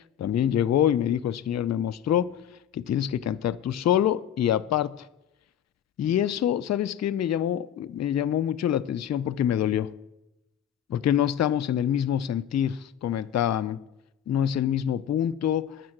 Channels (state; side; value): quieter; right; 9.9 dB